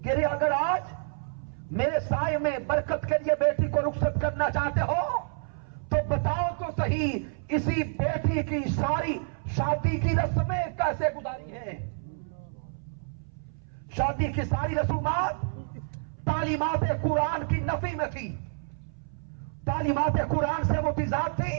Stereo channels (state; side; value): silent; left; 58 dB below the other